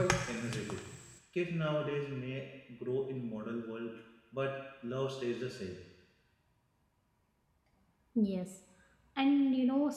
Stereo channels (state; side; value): identical; both; correlation 1.00